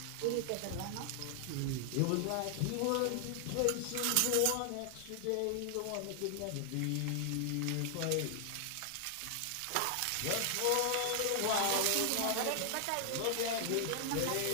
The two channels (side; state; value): both; different; correlation 0.00